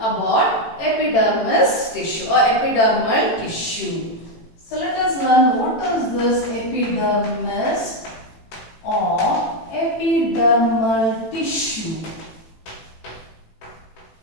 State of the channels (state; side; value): late; right; 18 ms